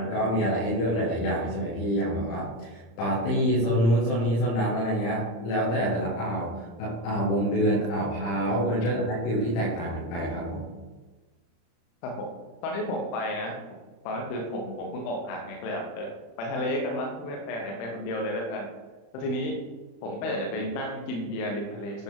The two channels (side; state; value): right; late; 35 ms